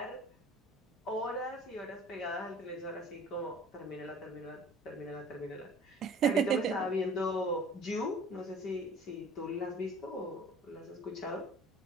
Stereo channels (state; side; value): normal; both; correlation 0.47